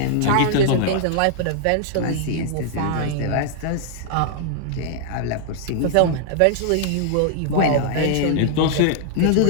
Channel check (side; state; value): both; different; correlation -0.01